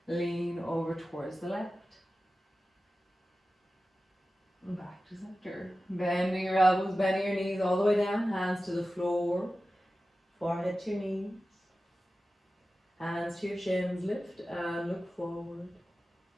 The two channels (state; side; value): normal; both; correlation 0.95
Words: Lean over towards the left. Back to center. Bending your elbows, bending your knees all the way down. Hands to the floor. Forehead to your knees. Hands to your shins. Lift and look forward.